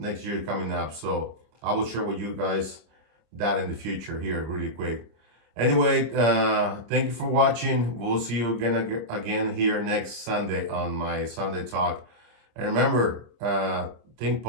year coming up. So I will share with you guys that in the future here really quick. Anyway, thank you for watching. We'll see you again here next Sunday on my Sunday talk. And remember, think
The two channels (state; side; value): late; left; 26 ms